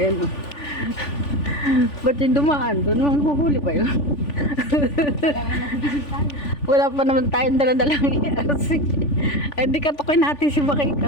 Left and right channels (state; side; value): late; right; 3.5 ms